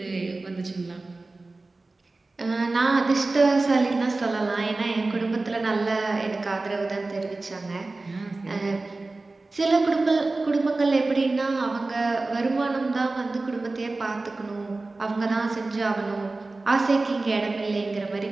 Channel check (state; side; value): quieter; left; 3.3 dB